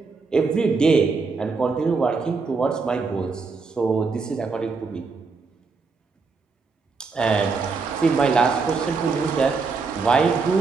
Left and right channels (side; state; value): left; quieter; 4.5 dB